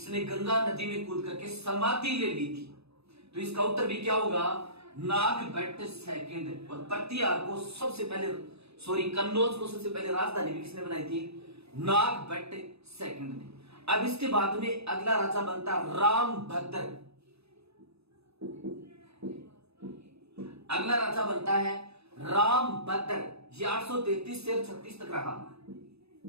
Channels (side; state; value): left; late; 0.79 ms